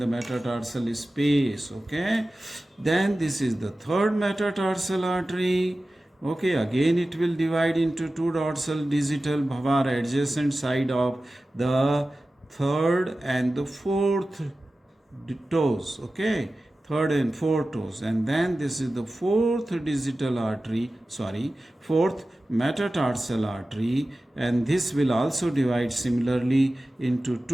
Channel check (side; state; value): both; normal; correlation 0.95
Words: metatarsal space, okay. Then this is the third metatarsal artery, okay. Again it will divide into two dorsal digital bhavar adjacent side of the third and the fourth toes, okay, third and fourth toes, and then this is the fourth metatarsal artery, and this will also divide similarly into